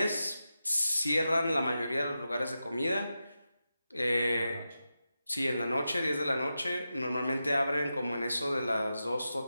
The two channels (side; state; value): both; inverted; correlation -0.90